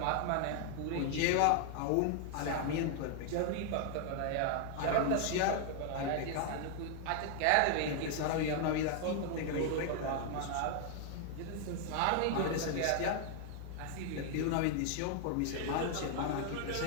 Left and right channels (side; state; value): both; different; correlation 0.00